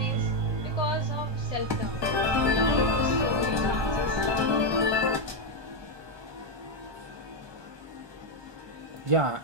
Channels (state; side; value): late; left; 1.2 ms